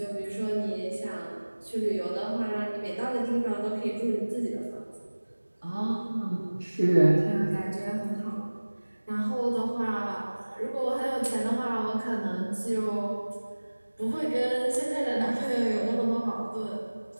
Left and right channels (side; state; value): both; inverted; correlation -1.00